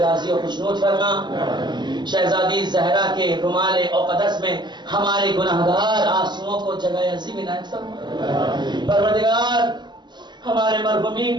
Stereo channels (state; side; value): late; left; 0.21 ms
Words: و خوشنود فرما. شہزادی زہرا کے رومال اقدس میں ہمارے گناہگار آنسوؤں کو جگہ عظیم عنایت فرما. پروردگار ہمارے